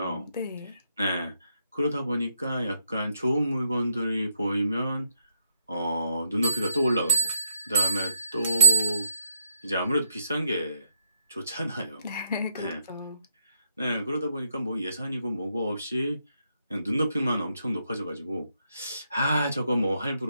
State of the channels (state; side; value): inverted; both; correlation -0.76